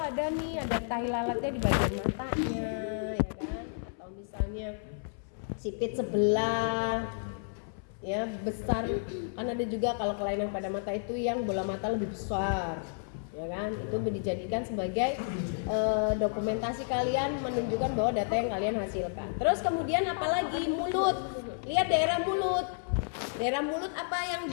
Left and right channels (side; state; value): right; silent; 57 dB below the other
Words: tahi lalatnya di bagian matanya, ya kan? Atau misalnya sipit sebelah ya besar. Kan ada juga kalau kelainan pada mata itu yang bola mata lebih besar, ya kan? Itu dijadikan sebagai dokumentasi kalian menunjukkan bahwa data yang kalian hasilkan. Terus kemudian apalagi mulut, lihat daerah mulut. Daerah mulut apa yang